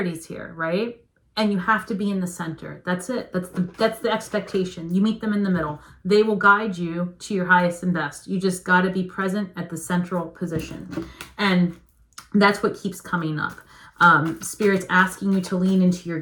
here, right? And you have to be in the center. That's it. That's the expectation. You meet them in the middle. They will guide you to your highest and best. You just got to be present at the central position. And that's what keeps coming up. Spirit's asking you to lean into your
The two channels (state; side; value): identical; both; correlation 1.00